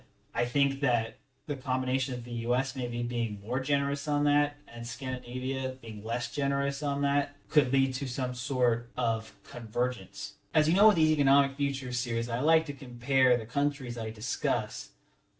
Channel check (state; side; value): identical; both; correlation 1.00